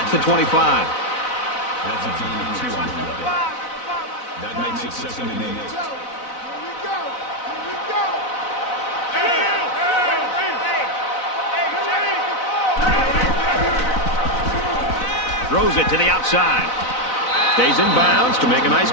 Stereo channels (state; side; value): late; right; 4.0 ms